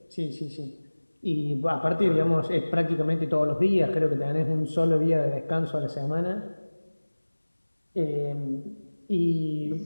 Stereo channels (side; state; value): both; inverted; correlation -1.00